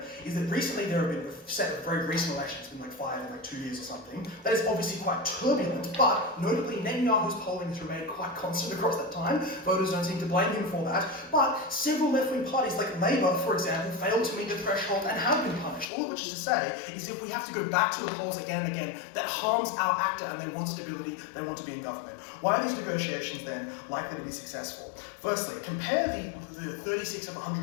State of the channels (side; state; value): right; drops out; at 15.9 s